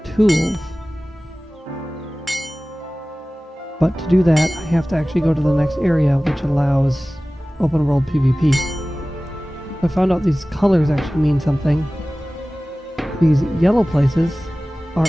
tools. But to do that, I have to actually go to the next area, which allows open world PvP. I found out these colors actually mean something. These yellow places are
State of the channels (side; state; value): both; normal; correlation 0.97